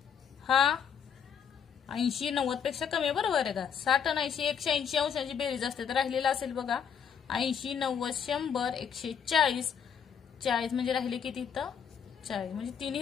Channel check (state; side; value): quieter; right; 7.5 dB